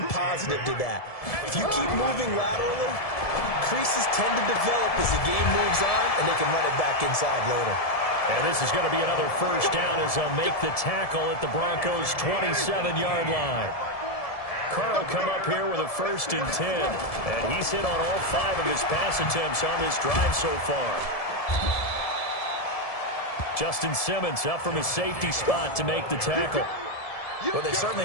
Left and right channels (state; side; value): late; right; 1.7 ms